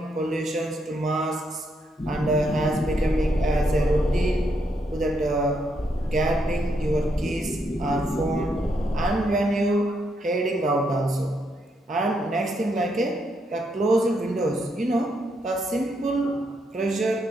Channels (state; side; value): normal; both; correlation 0.78